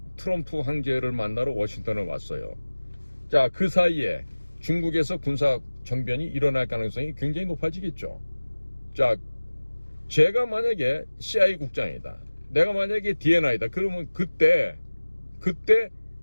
트럼프 황제를 만나러 워싱턴을 왔어요. 자, 그 사이에 중국에서 군사 정변이 일어날 가능성이 굉장히 높아지겠죠. 자, 제가 만약에 CIA 국장이다, 내가 만약에 DNI다, 그러면 그때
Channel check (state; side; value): inverted; both; correlation -1.00